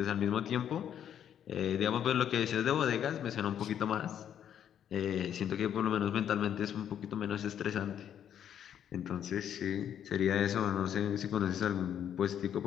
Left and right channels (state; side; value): quieter; right; 9.5 dB